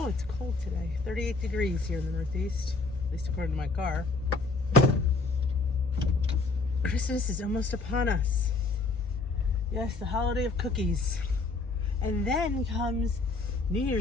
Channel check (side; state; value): right; quieter; 3.6 dB